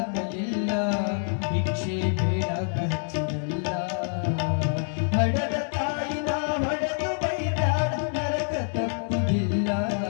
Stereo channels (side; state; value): right; silent; 61 dB below the other